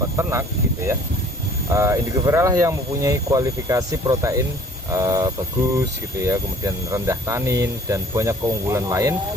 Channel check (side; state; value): both; normal; correlation 0.53